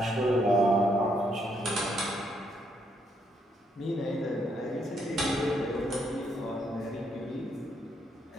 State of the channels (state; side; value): normal; both; correlation 0.74